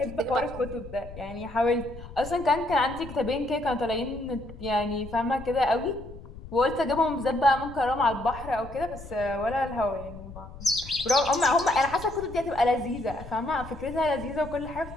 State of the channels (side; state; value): left; noise; rumble, 14 dB below the sound